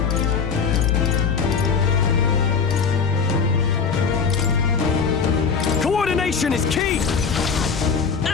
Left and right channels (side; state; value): right; quieter; 5.8 dB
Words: Coordination is key!